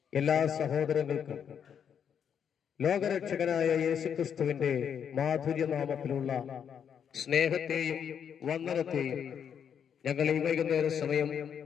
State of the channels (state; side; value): quieter; right; 7.9 dB